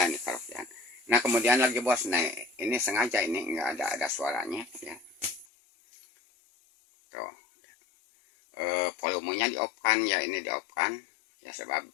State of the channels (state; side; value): drops out; right; at 5.5 s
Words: nih karaokean. Nah kemudian lagi bos, nah ini sengaja ini nggak ada suaranya ya, tuh volumenya di off kan ya, ini di off kan ya, sebab